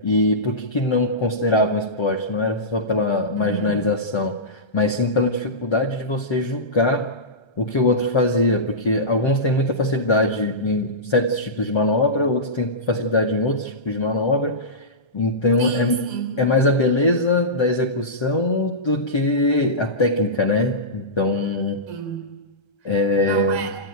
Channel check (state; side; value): late; right; 1.3 ms